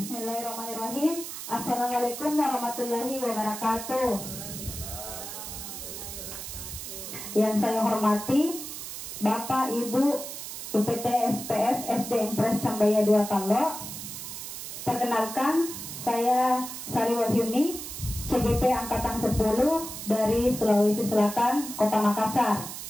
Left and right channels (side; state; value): right; noise; hiss, 9 dB below the sound